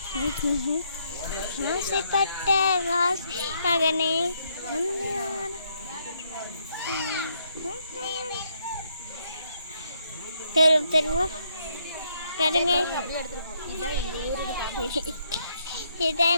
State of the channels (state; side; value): inverted; both; correlation -0.73